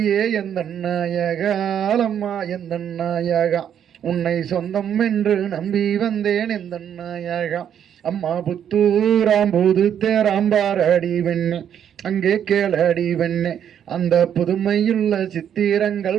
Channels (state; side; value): quieter; left; 9.1 dB